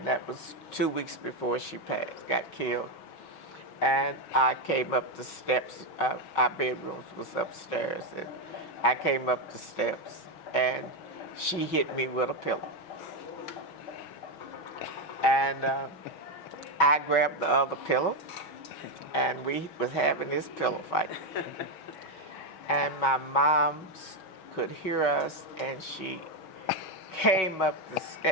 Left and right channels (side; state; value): right; late; 6.2 ms